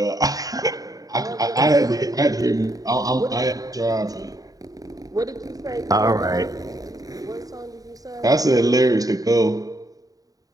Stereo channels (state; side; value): late; left; 0.18 ms